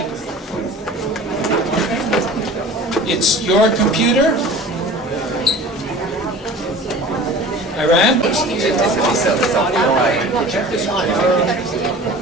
It's your computer? Iran?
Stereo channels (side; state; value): both; normal; correlation 0.41